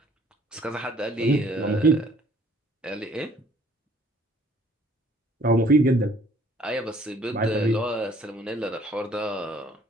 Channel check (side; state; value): both; normal; correlation 0.58